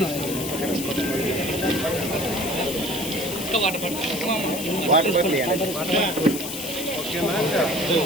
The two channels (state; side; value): noise; left; hiss, 6 dB below the sound